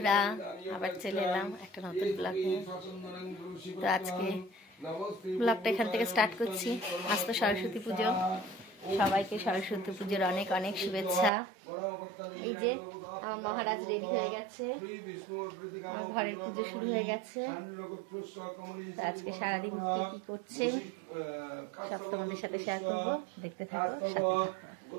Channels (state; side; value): drops out; left; at 11.3 s